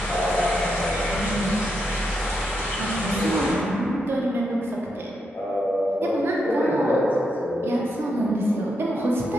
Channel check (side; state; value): both; normal; correlation 0.82